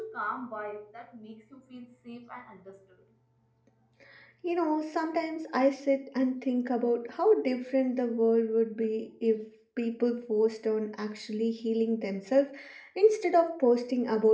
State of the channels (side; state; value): both; identical; correlation 1.00